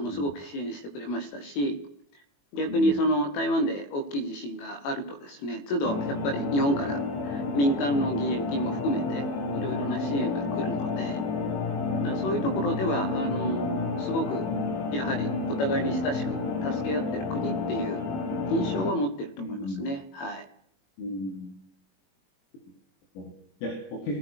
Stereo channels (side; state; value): right; late; 21 ms